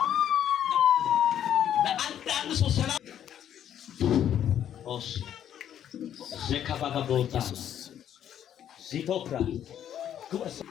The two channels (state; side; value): quieter; right; 10.1 dB